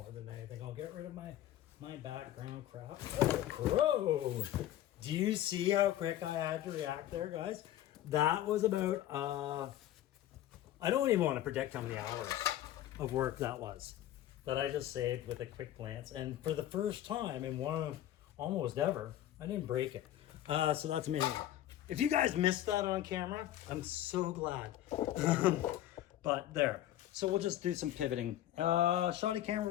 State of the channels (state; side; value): quieter; right; 12.9 dB